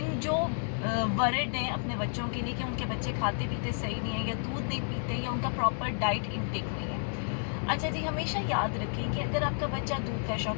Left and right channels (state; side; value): silent; right; 57 dB below the other